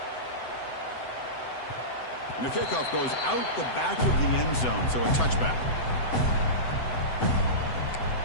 And if kickoff goes out the back of the end zone, so a touchback.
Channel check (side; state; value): right; late; 7.9 ms